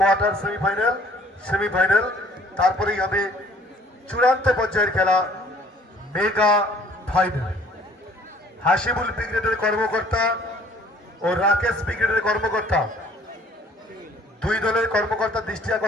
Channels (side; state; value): both; normal; correlation 0.57